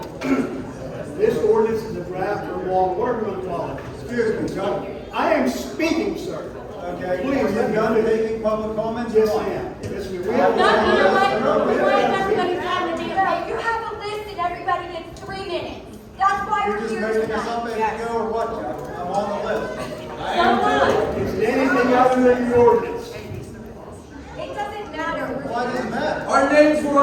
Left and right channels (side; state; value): both; identical; correlation 1.00